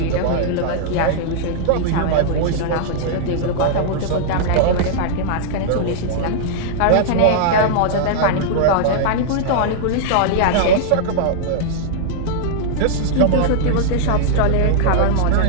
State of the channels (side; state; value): both; different; correlation -0.01